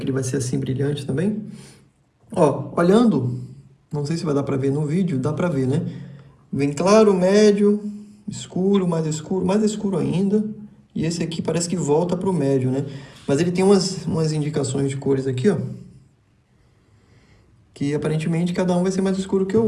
ele vai ser assim brilhante também? Ó, olhando, não sei se vai dar para ver no vídeo, dá para ver, né? Vem claro, médio, escuro, mais escuro ainda. E esse aqui parece que volta para o médio, né? Mas ele tem umas indicações de cores aqui, ó. Que aparentemente cada um vai ser mais escuro que o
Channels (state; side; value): identical; both; correlation 1.00